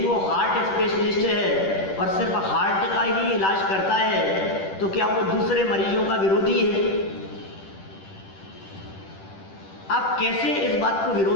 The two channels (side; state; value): right; late; 10 ms